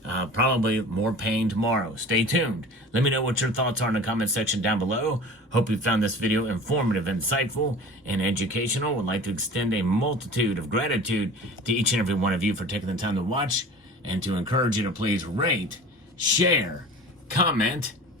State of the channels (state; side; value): normal; both; correlation 0.39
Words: probably more pain tomorrow. Stay tuned. Let me know what your thoughts are in the comment section down below. Hope you found this video informative, insightful, and educational. Would like to extend a multitude of gratitude to each and every one of you for taking the time to watch, and to encourage you to please rate, share, comment,